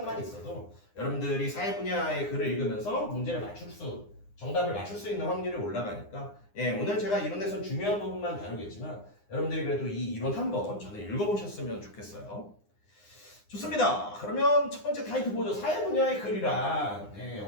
있어도 여러분들이 사회 분야의 글을 읽으면서 정답을 맞출 수 있는 확률이 올라가니까 오늘 제가 이론에서 중요한 부분만 다루겠지만 여러분들이 그래도 이 이론 한번 전에 읽어보셨으면 좋겠어요. 좋습니다. 그러면 첫 번째 타이틀 보죠. 사회 분야의 글이란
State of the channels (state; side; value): late; right; 9.8 ms